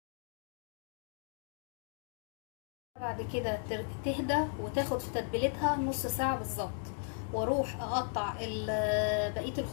بعد كده تهدى وتاخد في تتبيلتها نص ساعة بالظبط، واروح اقطع بقية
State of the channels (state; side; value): silent; right; 54 dB below the other